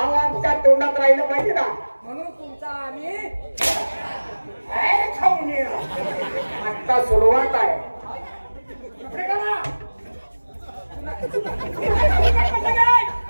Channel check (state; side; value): inverted; both; correlation -1.00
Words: आमच्या तोंडात राहिलं पाहिजे ना. म्हणून तुमचा आम्ही खाऊन ये. आता सुरुवात आहे.